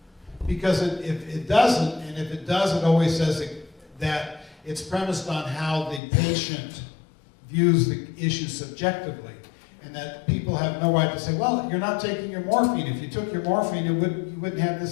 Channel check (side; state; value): right; drops out; at 6.0 s